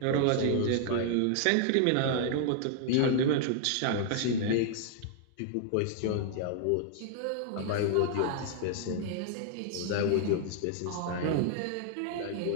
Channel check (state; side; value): different; both; correlation -0.01